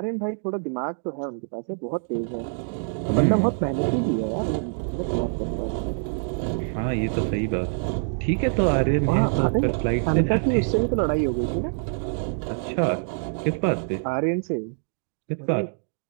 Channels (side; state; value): left; silent; digital silence